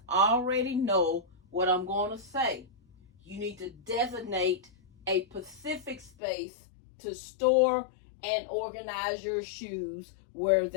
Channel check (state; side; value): drops out; right; at 6.1 s